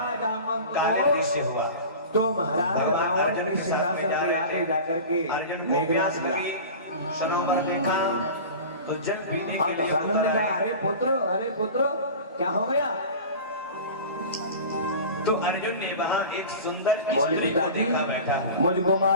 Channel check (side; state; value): both; inverted; correlation -0.35